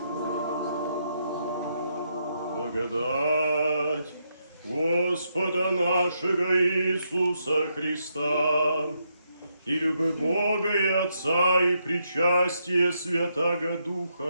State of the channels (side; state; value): both; inverted; correlation -0.79